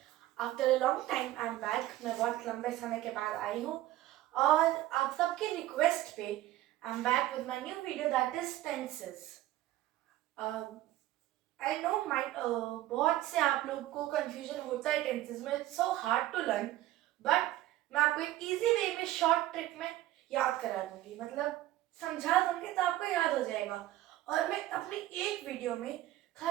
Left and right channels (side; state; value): left; quieter; 15.0 dB